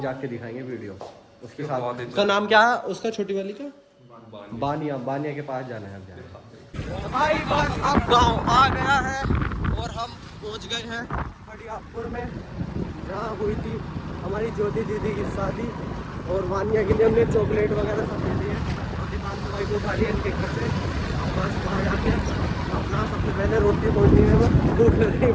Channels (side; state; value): both; identical; correlation 1.00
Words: जाके दिखाएंगे वीडियो उसके साथ। उसका नाम क्या है उसका, छोटी वाली का? बानिया के पास जाना है अब जाना। भाई बस अब गांव आ गया है और हम पहुंच गए हैं बड़ियापुर में, जहाँ हुई थी हमारी ज्योति दीदी की शादी। और वानिया के लिए हमने चॉकलेट वगैरह सब दे दिए। और दीपांशु भाई को उठा लिया इनके घर से। बस वहाँ जाके अपना सबसे पहले रोटी पहुँचनी है, भूख लग रही